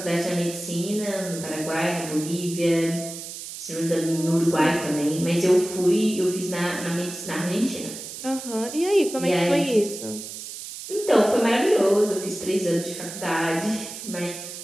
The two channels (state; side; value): noise; right; hiss, 10 dB below the sound